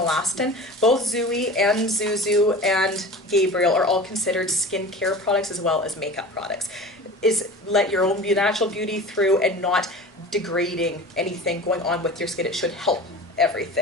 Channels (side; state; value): both; normal; correlation 0.37